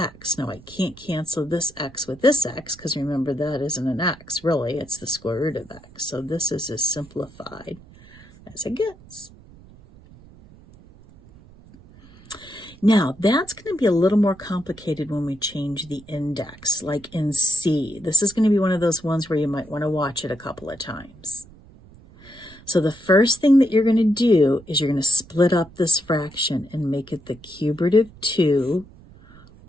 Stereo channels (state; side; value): noise; right; rumble, 23 dB below the sound